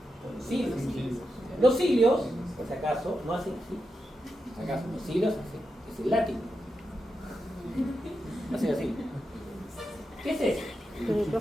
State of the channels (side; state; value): both; normal; correlation 0.87